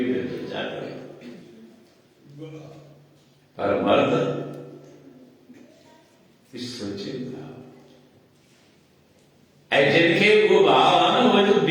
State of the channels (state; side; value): identical; both; correlation 1.00